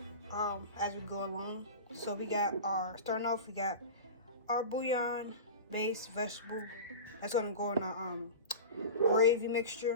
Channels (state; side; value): inverted; both; correlation -0.30